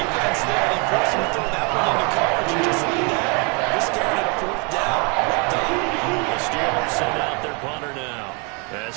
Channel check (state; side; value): quieter; left; 33.0 dB